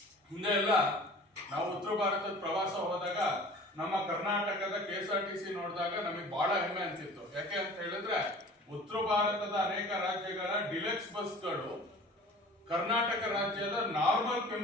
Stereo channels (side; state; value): both; normal; correlation 0.44